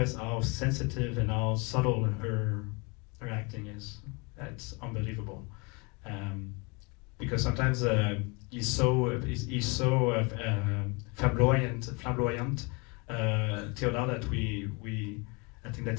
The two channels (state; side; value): quieter; right; 29.1 dB